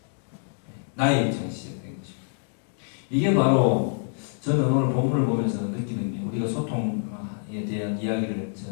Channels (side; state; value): right; silent; digital silence